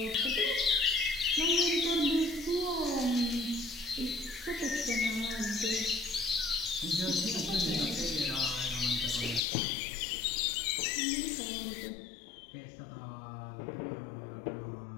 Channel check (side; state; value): right; drops out; at 9.4 s